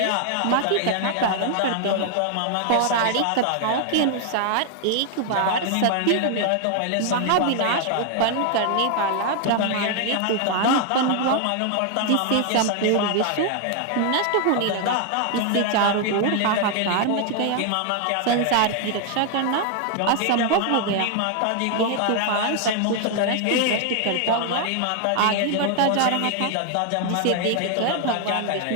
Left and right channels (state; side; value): different; both; correlation 0.00